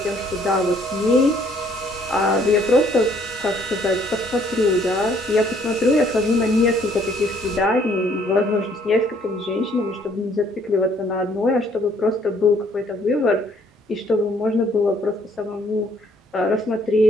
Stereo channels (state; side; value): normal; both; correlation 0.64